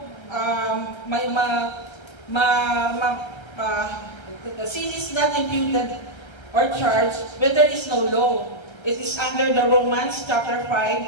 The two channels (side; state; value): right; late; 1.3 ms